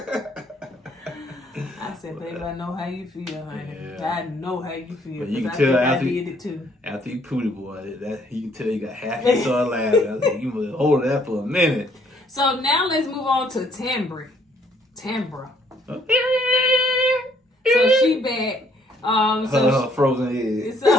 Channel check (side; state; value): both; normal; correlation 0.65